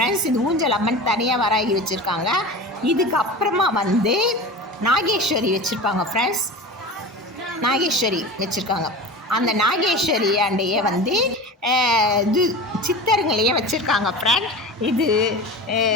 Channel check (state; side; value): normal; both; correlation 0.32